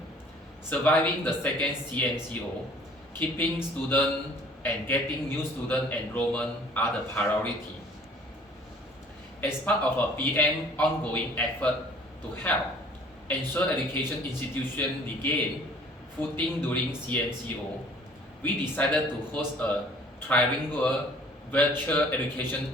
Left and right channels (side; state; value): both; normal; correlation 0.53